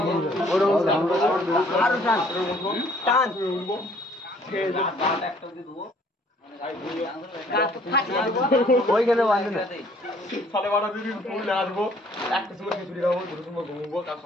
ওইখানে সাড়ে 12 দিন ফুল নাচবো, একটা সময় খিচুড়ি খাবো, দুটো সময় ঘুমবো, কাল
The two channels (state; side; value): normal; both; correlation 0.59